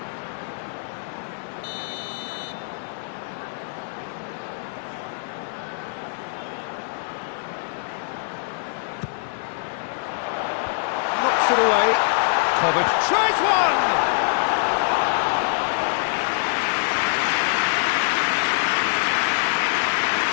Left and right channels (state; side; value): silent; right; digital silence